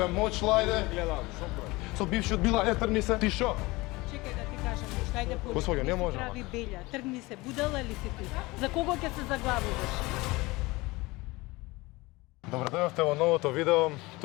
мочла ајде. Гледам, шо прави? Со бившиот била, трни се. Ти шо? Чекај да ти кажам нешто, ајде поли. Господјо, не може, Прави белја, тргни се, будала ли си ти? За кого ќе се заглавуваш? Добре дојдовте во новото видео.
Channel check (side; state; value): right; quieter; 22.1 dB